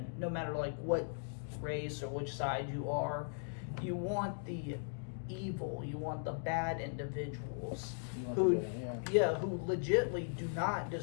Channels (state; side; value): silent; right; digital silence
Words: no matter like what race or which side you are, you want the evil, you want the bad individuals who who legitly do not